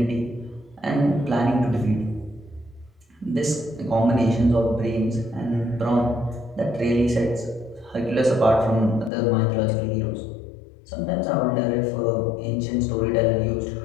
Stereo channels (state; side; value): drops out; right; at 9.1 s